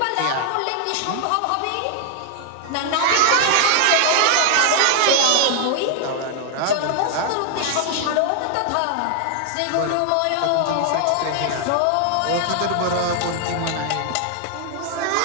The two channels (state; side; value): different; both; correlation 0.00